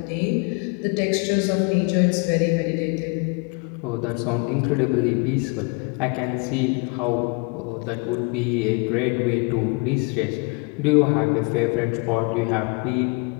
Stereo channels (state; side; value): quieter; right; 31.8 dB